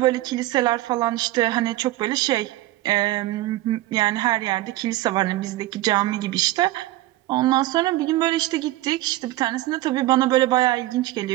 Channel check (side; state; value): left; quieter; 17.1 dB